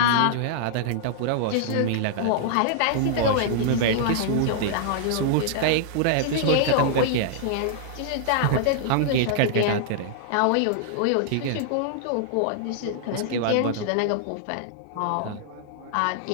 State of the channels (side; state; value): both; different; correlation -0.01